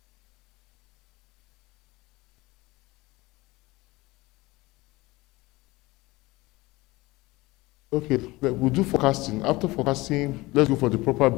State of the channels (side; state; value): right; quieter; 21.1 dB